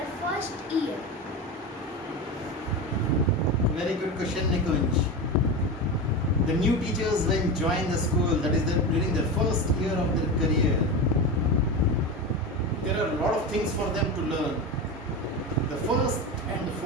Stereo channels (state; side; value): normal; both; correlation 0.22